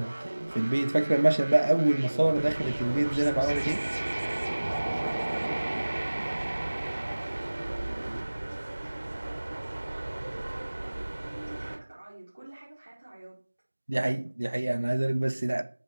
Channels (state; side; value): inverted; both; correlation -1.00